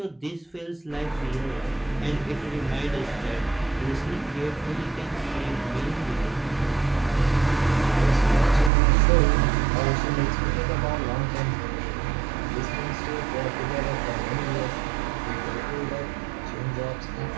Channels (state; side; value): drops out; left; at 8.7 s